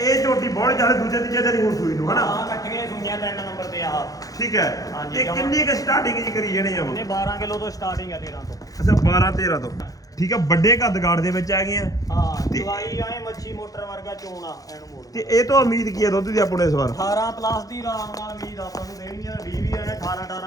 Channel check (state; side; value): late; right; 0.17 ms